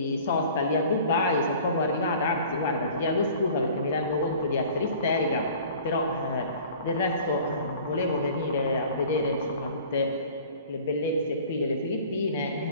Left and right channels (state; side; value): inverted; both; correlation -0.47